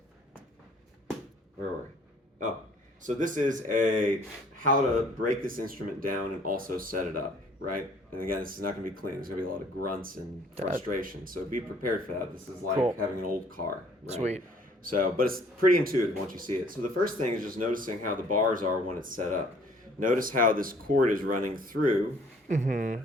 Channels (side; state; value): both; normal; correlation 0.57